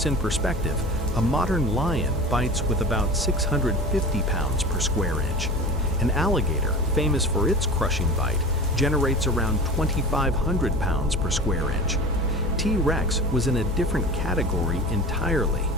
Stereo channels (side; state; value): both; normal; correlation 0.35